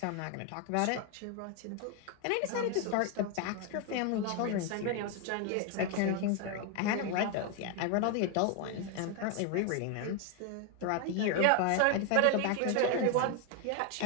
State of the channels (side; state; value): both; different; correlation 0.01